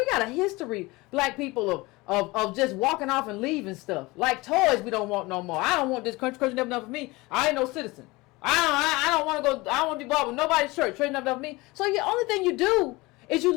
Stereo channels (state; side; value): quieter; right; 22.5 dB